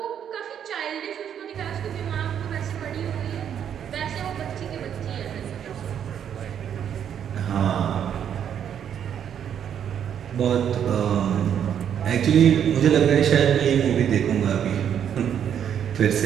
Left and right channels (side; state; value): left; quieter; 8.9 dB